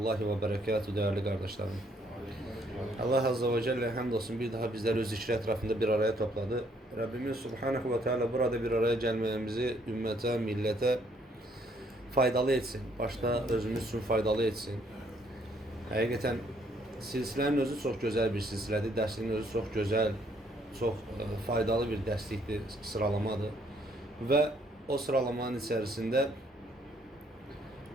ve berekatuhu değerli kardeşlerim. Allah Azze ve Celle hamdolsun bir daha bizleri öz zikri etrafında bir araya topladı. Rabbimiz Subhanahu ve Teala burada bir araya gelmemizi ümmete, millete faydalı etsin. Başta özümüz için faydalı etsin. Hakikaten silsilenin özü çok güzel bir silsiledir. Dersinin özü çok güzel, çok faydalı bir dersliktir, sıralamadır. Ve o sıralamanın içerisinde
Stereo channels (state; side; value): normal; both; correlation 0.67